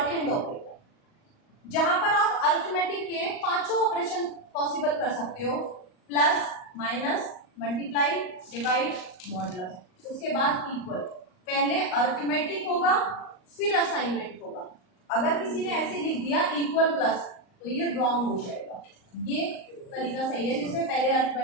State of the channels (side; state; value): right; late; 38 ms